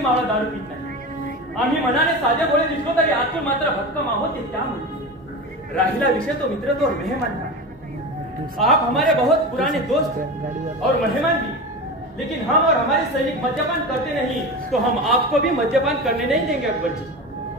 दारू पीत नाही। आम्ही मनाने साधे बोळे दिसलो तरी आतून मात्र भक्कम आहोत ते त्यामुळे। राहिला विषय तो मित्रत्व और मेहमान का। आप हमारे बहुत पुराने दोस्त और मेहमान भी, लेकिन हम और हमारे सैनिक मद्यपान करते नहीं तो हम आपको भी मद्यपान करने नहीं देंगे अकबर जी।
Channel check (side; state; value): both; normal; correlation 0.27